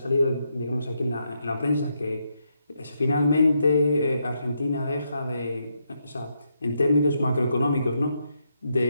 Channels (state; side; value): inverted; both; correlation -0.80